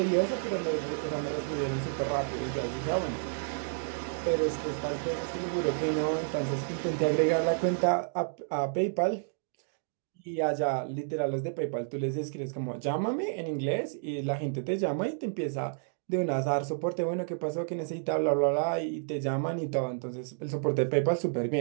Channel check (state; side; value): silent; left; digital silence